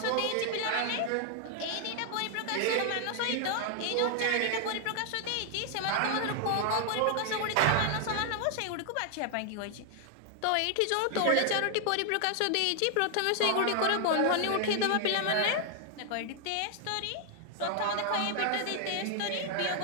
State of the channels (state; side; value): different; both; correlation 0.00